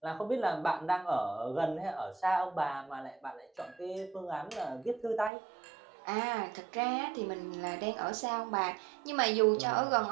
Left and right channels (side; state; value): left; drops out; at 5.3 s